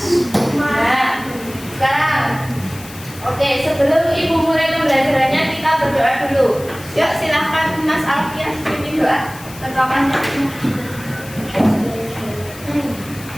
Nah, sekarang, oke, sebelum Ibu mulai pembelajarannya kita berdoa dulu. Yuk silahkan Mas Alfian pimpin doa ketuakannya.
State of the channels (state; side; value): noise; left; hiss, 17 dB below the sound